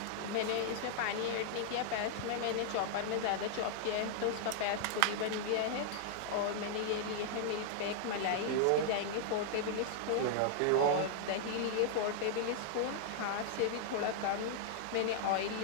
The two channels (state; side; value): different; both; correlation -0.01